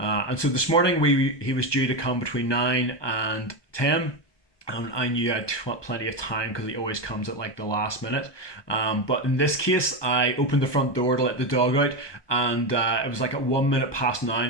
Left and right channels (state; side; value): late; right; 1.2 ms